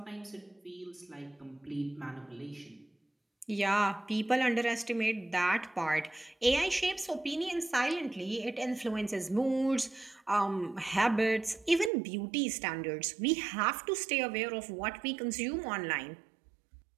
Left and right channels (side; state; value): left; drops out; at 11.9 s